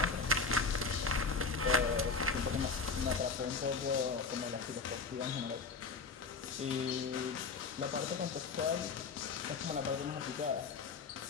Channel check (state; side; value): quieter; right; 4.6 dB